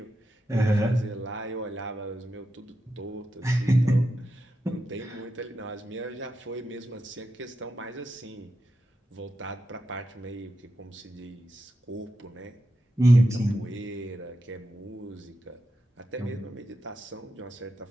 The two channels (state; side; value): normal; both; correlation 0.87